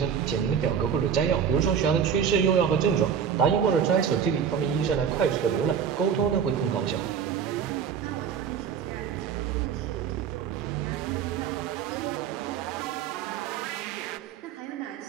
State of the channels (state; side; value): quieter; left; 7.7 dB